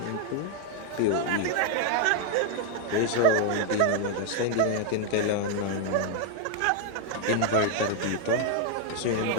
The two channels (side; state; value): both; different; correlation 0.00